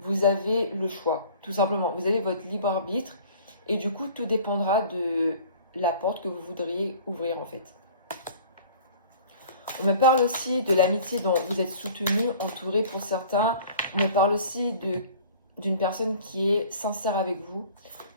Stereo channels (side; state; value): both; inverted; correlation -0.47